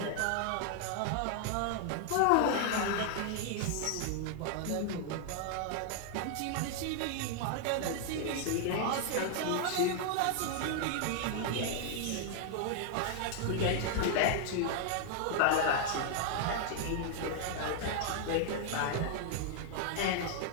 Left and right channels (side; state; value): both; different; correlation 0.00